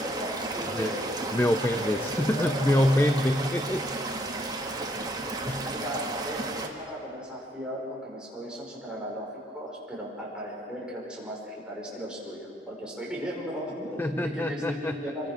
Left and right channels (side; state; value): both; normal; correlation 0.70